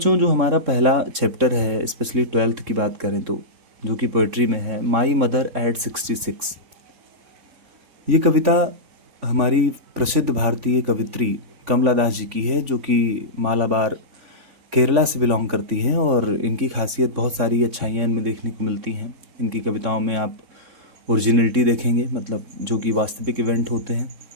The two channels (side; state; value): left; late; 3.7 ms